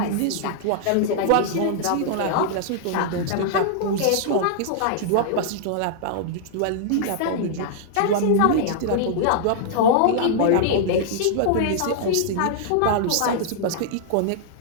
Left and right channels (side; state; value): both; different; correlation -0.01